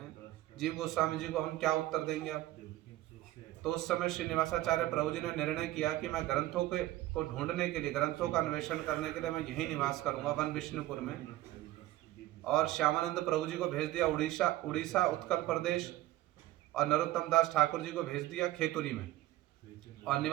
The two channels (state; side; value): quieter; left; 16.0 dB